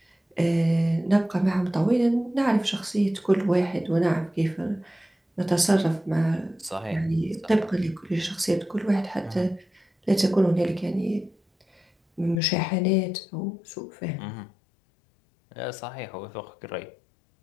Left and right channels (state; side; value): drops out; right; at 12.4 s